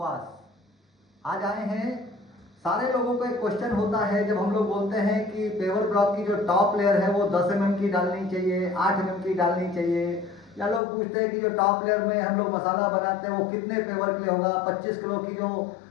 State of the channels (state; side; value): drops out; right; at 10.8 s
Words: आज आए हैं, सारे लोगों को एक क्वेश्चन होता है जब हम लोग बोलते हैं कि पेवर ब्लॉक की जो टॉप लेयर है वो 10 mm की डालनी चाहिए, 8 mm की डालनी चाहिए, या लोग पूछते हैं कि जो टॉप लेयर में हम लोग मसाला बनाते हैं वो कितने पेवर के लिए होगा। 25 किलो की जो